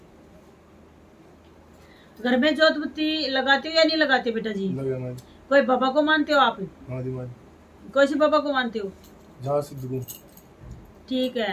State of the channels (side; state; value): both; identical; correlation 1.00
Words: घर में जोत बत्ती लगाते हो या नहीं लगाते बेटा जी? लगे। कोई बाबा को मानते हो आप? हाँ जी माँ। कौन से बाबा को मानते हो? जहाँ सिद्ध को। ठीक